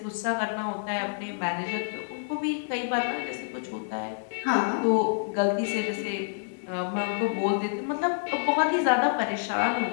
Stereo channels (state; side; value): silent; right; digital silence